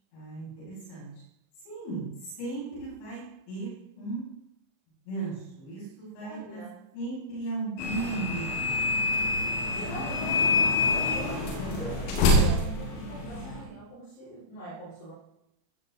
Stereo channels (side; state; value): right; late; 38 ms